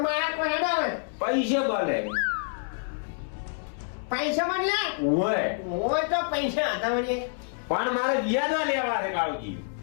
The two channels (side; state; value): right; silent; 59 dB below the other